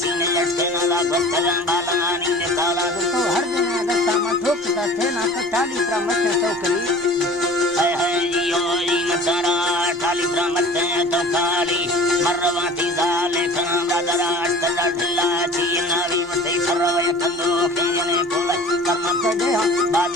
चीन लटके ना वाला बस्तगन बालानी ने काला तो हर दिन अगस्ता में ठोकता थे ना तो टाली पर मत टोकरी है यो ई मतारा टाली पर मत तो काली मरवाती जाले खान दादरा अष्टदा ढिल्ला चीना भी मते सरवे कंदो केने कोल कर्म दे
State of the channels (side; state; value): both; normal; correlation 0.43